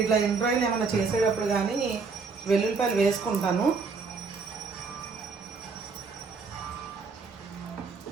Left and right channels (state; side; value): quieter; left; 4.7 dB